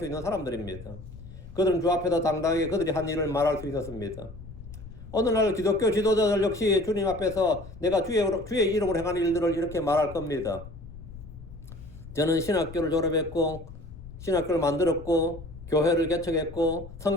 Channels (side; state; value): left; noise; rumble, 15 dB below the sound